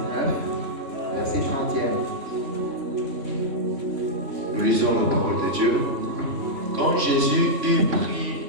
verset 31. Nous lisons la parole de Dieu. Quand Jésus eut pris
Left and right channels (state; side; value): late; left; 3.5 ms